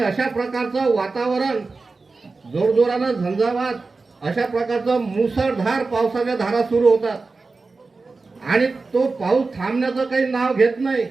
प्रकारचं वातावरण, जोरजोरानं झंझावात, अशा प्रकारचं मुसळधार पावसाच्या धारा सुरू होतात. आणि तो पाऊस थांबण्याचं काही नाव घेत नाही.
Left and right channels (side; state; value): left; quieter; 3.9 dB